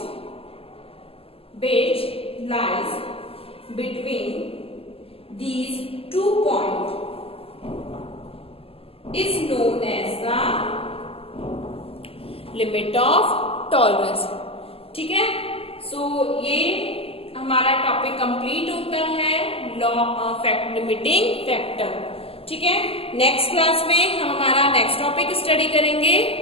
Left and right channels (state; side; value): late; right; 0.28 ms